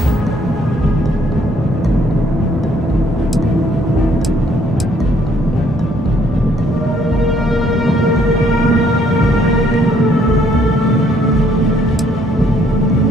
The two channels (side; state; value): both; normal; correlation 0.65